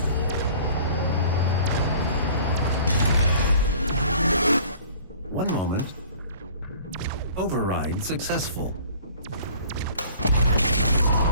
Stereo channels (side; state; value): both; inverted; correlation -0.49